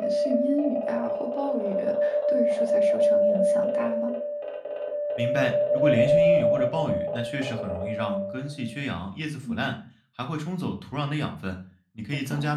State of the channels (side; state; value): both; identical; correlation 1.00